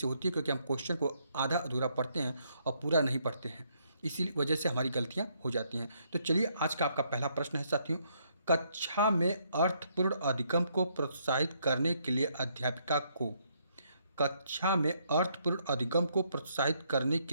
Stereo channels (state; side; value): inverted; both; correlation -0.72